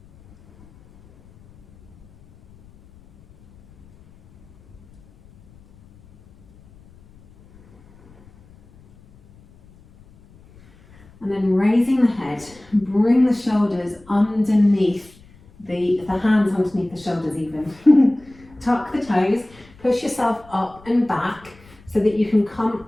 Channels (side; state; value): left; noise; rumble, 26 dB below the sound